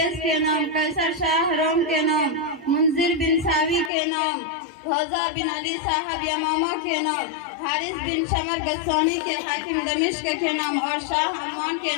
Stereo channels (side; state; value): right; drops out; at 3.9 s